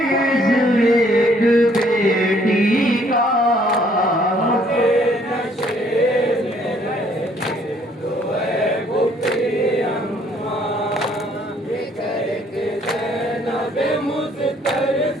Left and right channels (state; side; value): normal; both; correlation 0.63